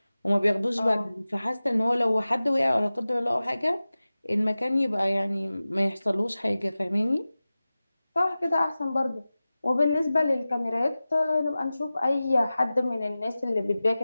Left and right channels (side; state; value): both; inverted; correlation -0.96